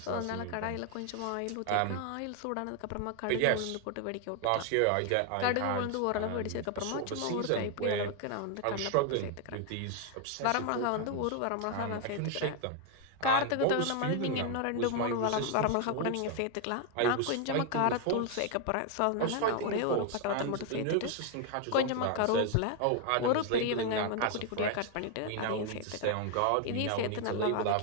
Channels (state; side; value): different; both; correlation 0.01